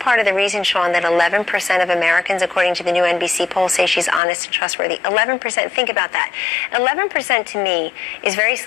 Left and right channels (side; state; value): right; drops out; at 4.2 s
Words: of the reason, Sean, that 11% of Americans, according to the new NBC poll, say she's honest and trustworthy. 11%, think about that. 11% to me is very